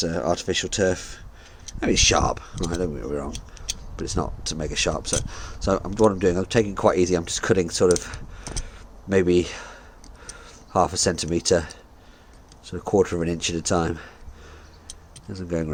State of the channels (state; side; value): identical; both; correlation 1.00